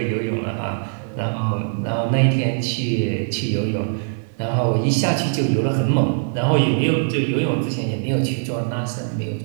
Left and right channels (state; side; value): silent; left; 55 dB below the other